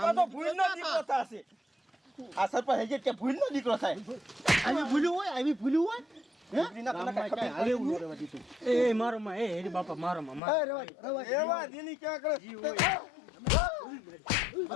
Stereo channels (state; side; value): drops out; right; at 10.4 s